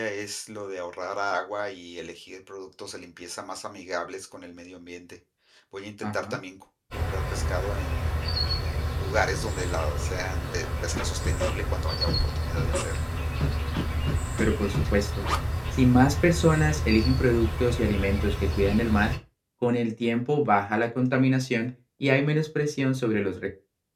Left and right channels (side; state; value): both; identical; correlation 1.00